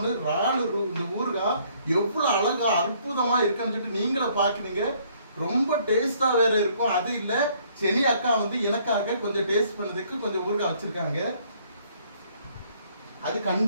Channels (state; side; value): inverted; both; correlation -0.64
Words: ராலு இந்த ஊறுகாய் எவ்வளவு அழகா அற்புதமா இருக்குன்னு சொல்லிட்டு நீங்களே பாக்குறீங்க. ரொம்ப டேஸ்டா வேற இருக்கும். அது இல்ல, செனி அக்கா எனக்காக கொஞ்சம் டேஸ்ட் பண்ணதுக்கு கொஞ்சம் ஊறுகாய் வச்சிருக்காங்க. அது